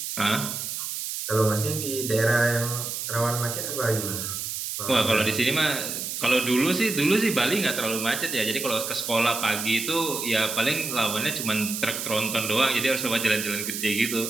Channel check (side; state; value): right; noise; hiss, 4 dB below the sound